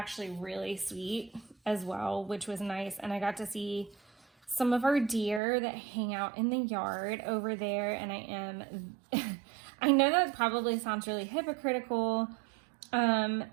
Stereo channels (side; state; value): left; drops out; at 5.4 s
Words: really sweet as well, which was nice. And I got to see some of our deer that hang out in the yard over there. And I know that probably sounds really hypocritical,